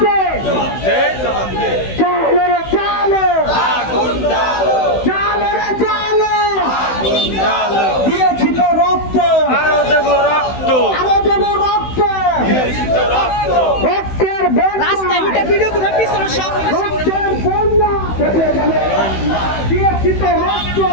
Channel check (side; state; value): right; late; 16 ms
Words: দে, জবাব দে জবাব দে চালো রে চালো, আগুন জ্বালো চালো রে চালো, আগুন জ্বালো দিয়েছি তো রক্ত, আরো দেব রক্ত আরো দেবো রক্ত, দিয়েছি তো রক্ত রক্তের বন্যা, রাস্তায় উঠে ভিডিও করে পিছনে সব রক্তের বন্যা, দিয়েছি তো রক্ত,